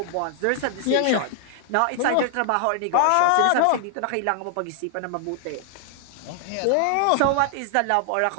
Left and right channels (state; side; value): different; both; correlation 0.00